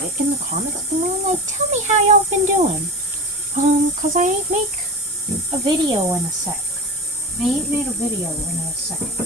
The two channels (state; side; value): normal; both; correlation 0.29